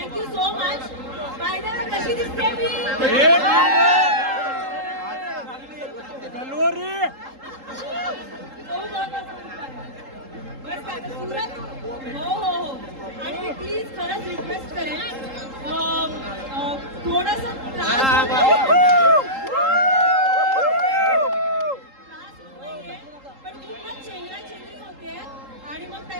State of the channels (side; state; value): left; late; 3.8 ms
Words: so much. By the way कशी दिसते मी? गलोरी बस काय आता सूरज. हो हो हो. आणि मी प्लीज खरंच रिक्वेस्ट करेन, थोडंसं त्रास नाहीये, पण पूर्ण चेंगराचेंगरी होते. आणि मग